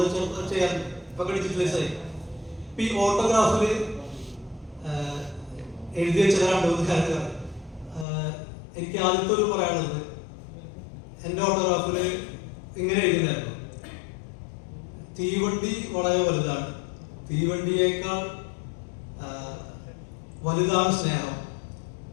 ചെയ്യാറുണ്ട്. ഇപ്പൊ ഡിജിറ്റലൈസ് ആയി. ഈ ഓട്ടോഗ്രാഫിൽ എഴുതി വെച്ച 2-3 കാര്യങ്ങൾ എനിക്ക് ആദ്യത്തെ ഒരു പറയാനുള്ളത്, എൻ്റെ ഓട്ടോഗ്രാഫിൽ ഇങ്ങനെ എഴുതിയിട്ടുണ്ടായിരുന്നു: തീവണ്ടി വളരെ വലുതാണ്, തീവണ്ടിയേക്കാൾ വലുതാണ് സ്നേഹം,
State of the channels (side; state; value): right; drops out; at 8.1 s